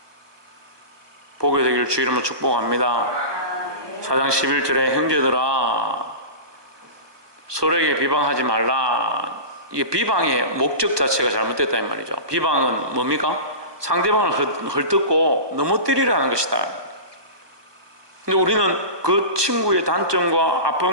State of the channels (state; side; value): late; left; 1.2 ms